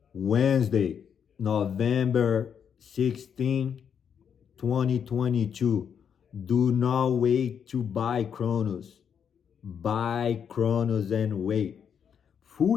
Wednesday, November 16, 2022. Do not wait to buy Cronos. Buy Cronos and wait.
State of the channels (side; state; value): right; quieter; 7.6 dB